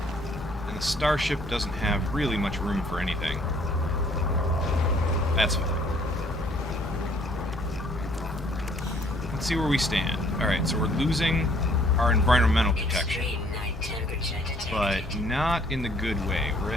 And the starship doesn't have really much room for anything. That's fine. Let's see where we stand. Alright, so we're losing our environmental protection. But not in the good way. We're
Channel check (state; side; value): normal; both; correlation 0.61